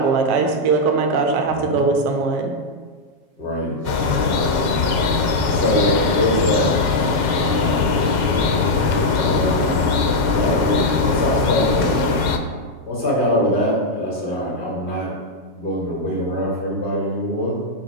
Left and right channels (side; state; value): left; late; 7.3 ms